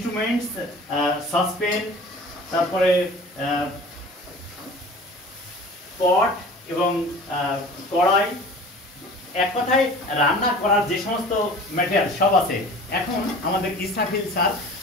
সসপেন, তারপরে পট এবং কড়াই, এক কথায় রান্না করার যে সমস্ত ম্যাটেরিয়াল সব আছে। এখন আমাদের ইসরাফিল স্যার,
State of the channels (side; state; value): both; normal; correlation 0.42